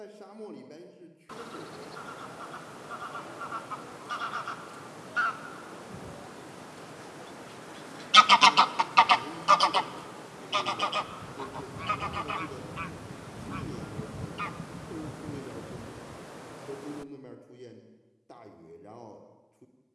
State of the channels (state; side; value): identical; both; correlation 1.00